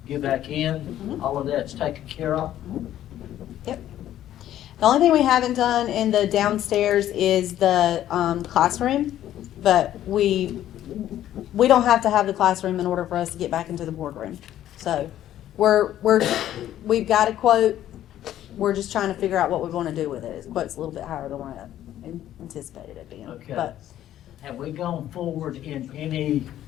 get back in. All of that's taken care of. Yep. The only thing we haven't done in the downstairs is the classroom, but we don't have to have the classroom in order for us to get back into the boardroom. So we've got a quote. We're just trying to figure out what we want to do with it. His quote's a little bit higher than what I anticipated it being. Okay. But Have we gone forward in any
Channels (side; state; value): right; quieter; 12.2 dB